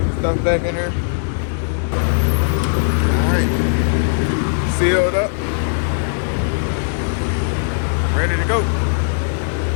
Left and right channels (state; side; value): silent; right; digital silence